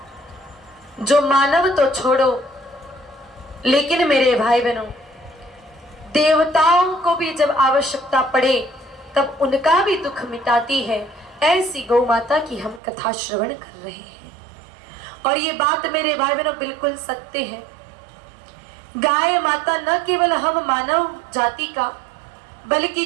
जो मानव तो छोड़ो लेकिन मेरे भाई बहनों देवताओं को भी जब आवश्यकता पड़े तब उनका भी दुख मिटाती है, ऐसी गौ माता की हम कथा श्रवण कर रहे हैं। और ये बात मेरे भाई बहनों बिल्कुल सत्य है। गाय माता न केवल हम मानव जाति का बल्कि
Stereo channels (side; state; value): left; drops out; at 12.8 s